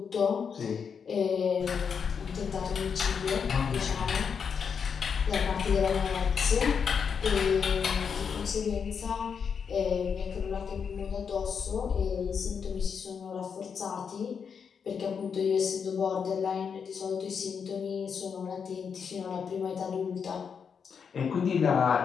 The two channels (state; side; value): quieter; right; 6.5 dB